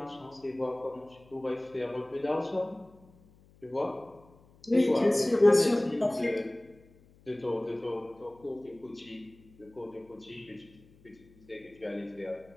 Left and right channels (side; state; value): left; noise; hum, 27 dB below the sound